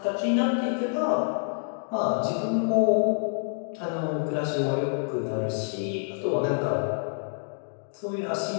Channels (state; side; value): silent; right; digital silence